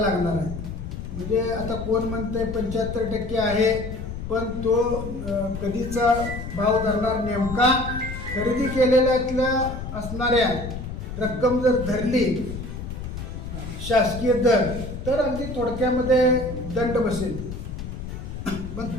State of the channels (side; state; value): left; noise; rumble, 8 dB below the sound